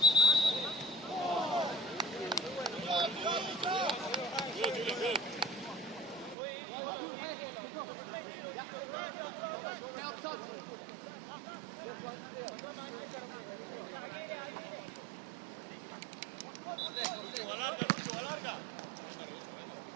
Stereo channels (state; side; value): drops out; left; at 6.4 s